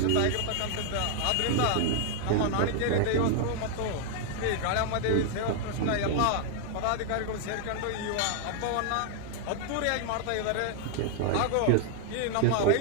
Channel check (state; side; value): different; both; correlation 0.00